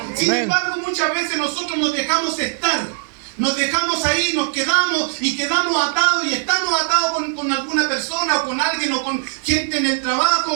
Sin embargo, muchas veces nosotros nos dejamos estar. Nos dejamos ahí, nos quedamos y quedamos atados y estamos atados con alguna persona o con alguien o con gente en el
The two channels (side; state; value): left; silent; 61 dB below the other